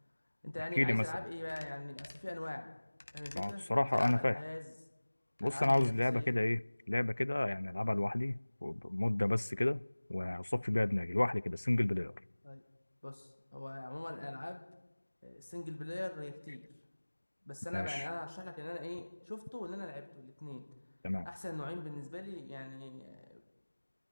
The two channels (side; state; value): both; inverted; correlation -1.00